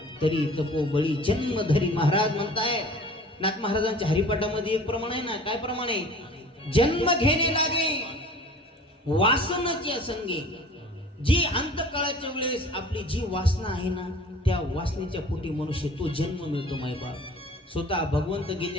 तरी तपोबळी जन्म धरी. महाराज म्हणताय नाथ महाराजांच्या हरिपाठामध्ये एक प्रमाण आहे ना. काय प्रमाण आहे? जन्म घेणे लागे वासनाच्या संगे. जी अंतकाळाच्या वेळेस आपली जी वासना आहे ना, त्या वासनेच्या पोटी मनुष्य तो जन्म मिळतो. मायबाप स्वतः भगवंत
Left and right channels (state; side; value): normal; both; correlation 0.45